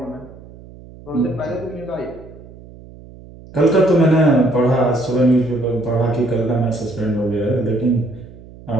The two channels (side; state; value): right; noise; hum, 19 dB below the sound